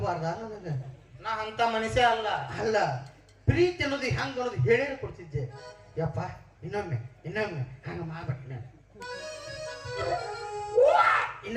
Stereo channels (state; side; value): identical; both; correlation 1.00